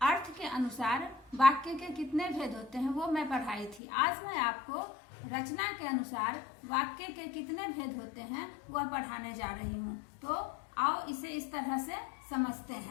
अर्थ के अनुसार वाक्य के कितने भेद होते हैं वो मैं पढ़ाई थी. आज मैं आपको रचना के अनुसार वाक्य के कितने भेद होते हैं वह पढ़ाने जा रही हूँ. तो आओ इसे इस तरह से समझते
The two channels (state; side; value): drops out; right; at 3.8 s